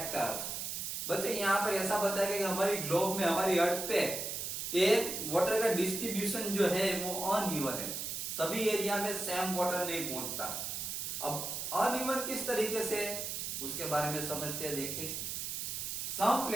बच्चों यहाँ पर ऐसा बताया गया कि हमारी ग्लोब में, हमारी अर्थ पे ये वाटर का डिस्ट्रीब्यूशन जो है वो अनइवन है, सभी एरिया में सेम वाटर नहीं पहुंचता। अब अनइवन किस तरीके से, उसके बारे में समझते हैं। देखिए, some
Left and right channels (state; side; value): noise; right; hiss, 4 dB below the sound